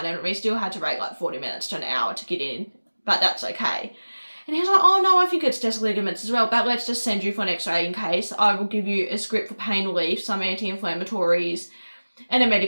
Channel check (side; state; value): both; inverted; correlation -1.00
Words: and we still had to wait 40 minutes to an hour to get in, but that's okay. And he was like, oh no, I think it's just ligaments as well, but let's just send you for an x-ray in case. I will give you a script for pain relief, some anti-inflammatories, and a